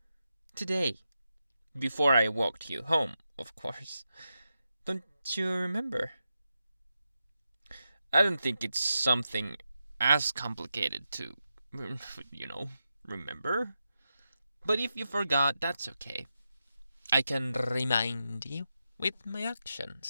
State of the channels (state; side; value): inverted; both; correlation -0.88